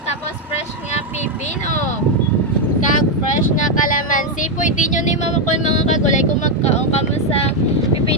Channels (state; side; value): normal; both; correlation 0.03